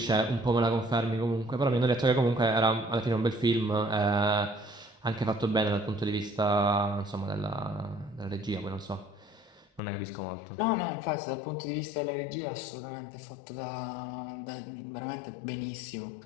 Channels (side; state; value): right; drops out; at 9.8 s